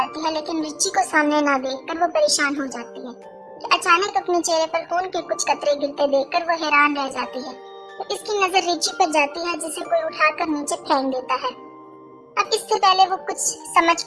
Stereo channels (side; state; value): both; identical; correlation 1.00